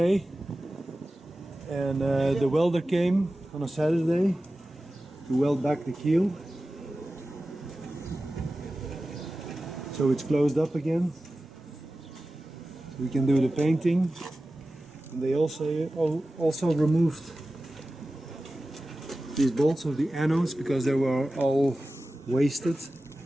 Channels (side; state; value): both; normal; correlation 0.95